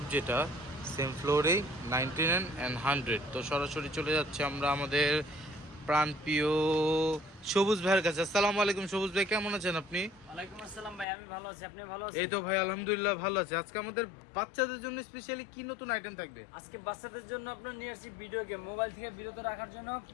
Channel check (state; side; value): drops out; right; at 11.1 s